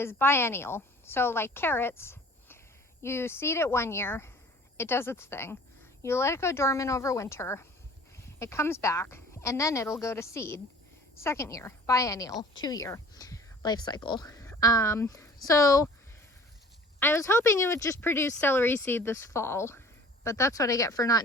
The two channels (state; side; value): normal; both; correlation 0.47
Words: biennial. So like carrots, you seed it 1 year, it does its thing. You let it go dormant over winter, it comes back, and then it'll go to seed. Second year, biennial, 2-year life cycle. So I was hoping it would just produce celery seed this fall, but that's what I get for not